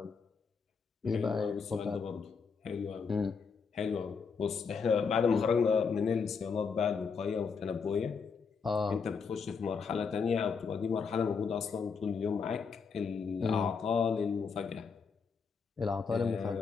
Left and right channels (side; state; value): right; quieter; 5.6 dB